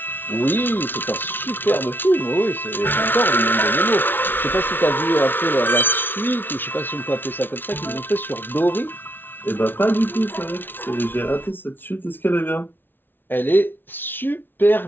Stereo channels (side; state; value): right; late; 0.098 ms